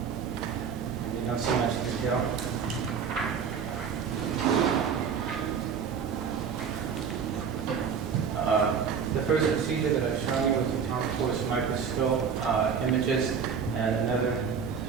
You don't see much detail. The first procedure that I've shown you was the atomic force microscope images, and another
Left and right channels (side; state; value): left; quieter; 6.6 dB